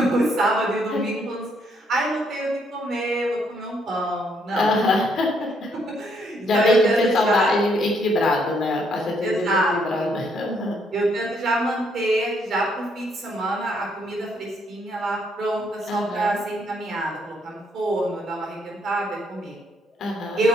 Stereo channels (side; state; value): both; normal; correlation 0.71